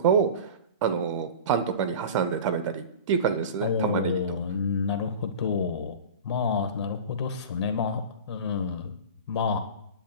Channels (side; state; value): both; inverted; correlation -0.33